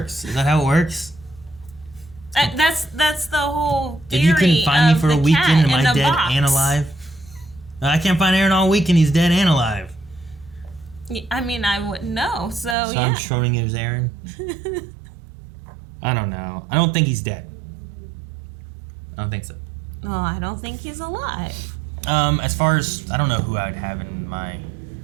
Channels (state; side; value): drops out; left; at 12.8 s